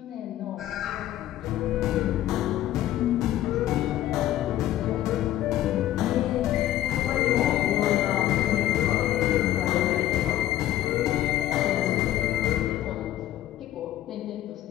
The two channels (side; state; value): right; quieter; 13.4 dB